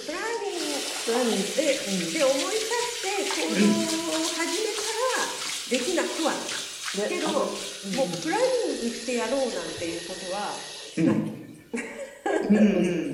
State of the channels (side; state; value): both; identical; correlation 1.00